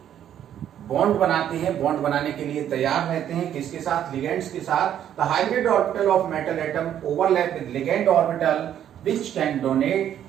बॉन्ड बनाते हैं, बॉन्ड बनाने के लिए तैयार रहते हैं, किसके साथ, लिगेंड्स के साथ। The hybrid orbital of metal atom overlap with ligand orbital which can donate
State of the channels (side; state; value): left; quieter; 10.3 dB